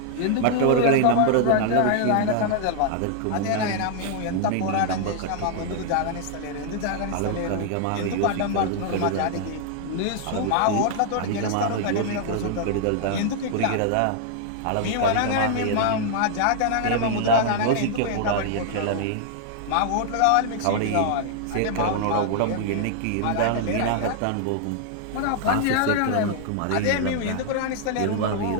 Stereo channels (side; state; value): both; different; correlation -0.01